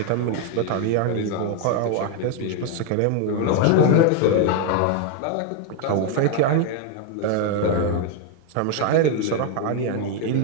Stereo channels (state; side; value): different; both; correlation 0.01